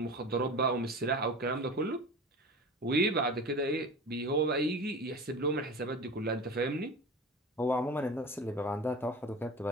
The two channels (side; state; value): both; normal; correlation 0.34